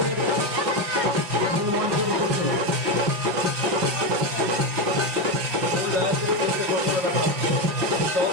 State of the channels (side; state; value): left; late; 5.8 ms